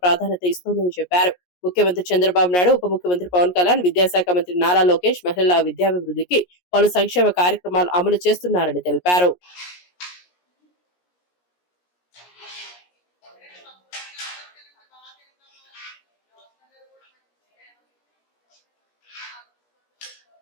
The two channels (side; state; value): right; late; 17 ms